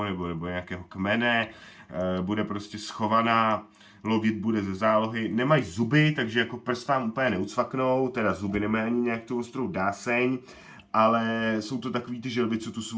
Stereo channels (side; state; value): both; identical; correlation 1.00